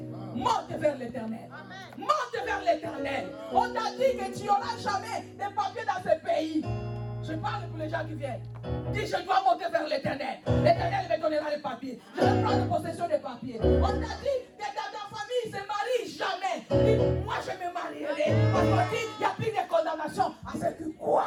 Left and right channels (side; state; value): both; identical; correlation 1.00